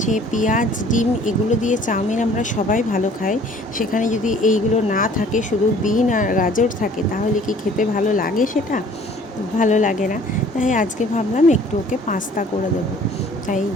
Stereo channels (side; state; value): both; normal; correlation 0.53